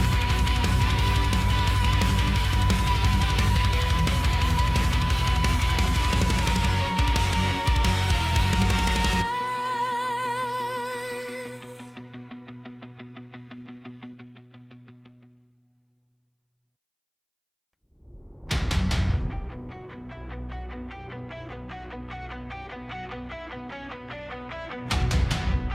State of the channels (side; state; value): both; identical; correlation 1.00